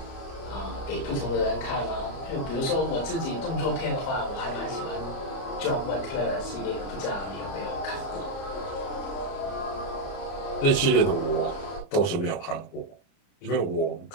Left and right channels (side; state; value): right; late; 29 ms